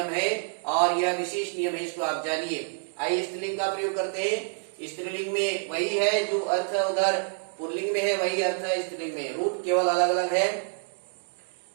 है और यह विशेष नियम है, इसको आप जानिए। आइए स्त्रीलिंग का प्रयोग करते हैं। स्त्रीलिंग में वही है जो अर्थ उधर पुल्लिंग में है, वही अर्थ है स्त्रीलिंग में। रूप केवल अलग अलग है।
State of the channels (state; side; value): silent; left; 60 dB below the other